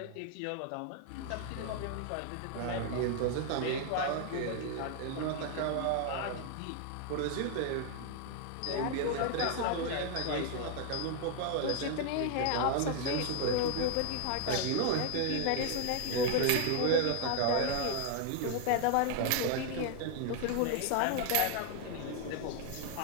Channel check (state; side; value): different; both; correlation 0.00